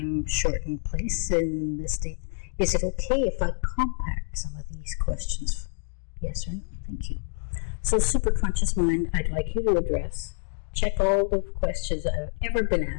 place in this state, is it okay if I compact some of these questions? Yes or no? Thank you. So, superconscious mind, I'd like you to address, check all the questions that have ever been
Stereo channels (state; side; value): silent; right; digital silence